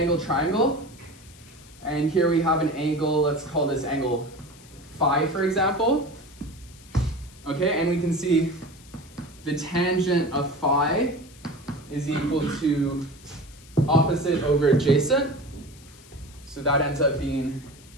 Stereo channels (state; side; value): noise; left; hiss, 23 dB below the sound